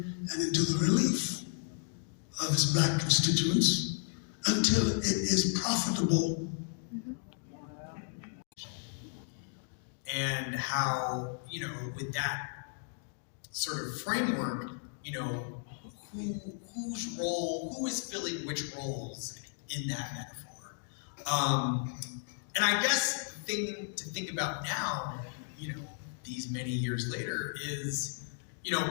and into the relief of its Black constituents until it is profitable. And how, with that sort of framework, who is filling which roles in that metaphor? And I guess the thing to think about now, these many years later, is,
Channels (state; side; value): silent; right; 55 dB below the other